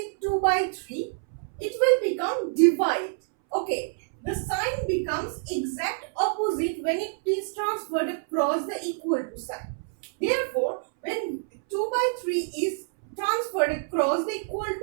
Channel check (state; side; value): silent; left; 60 dB below the other